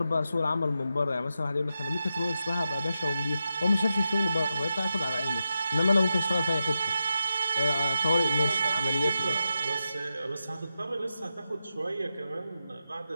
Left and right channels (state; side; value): inverted; both; correlation -0.89